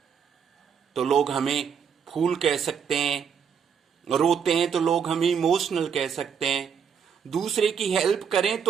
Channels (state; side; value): quieter; left; 7.1 dB